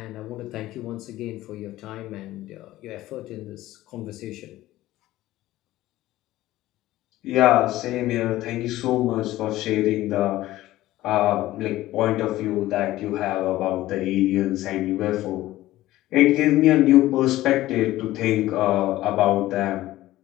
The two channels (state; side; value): quieter; right; 15.9 dB